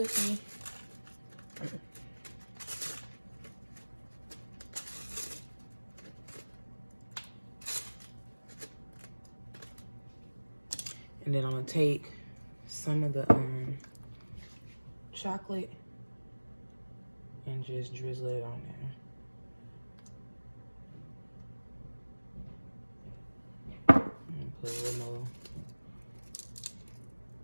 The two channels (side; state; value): both; inverted; correlation -1.00